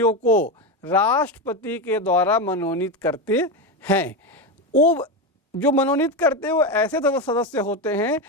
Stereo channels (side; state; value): both; normal; correlation 0.14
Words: को राष्ट्रपति के द्वारा मनोनीत करते हैं। वो जो मनोनीत करते हैं वो ऐसे सदस्य होते हैं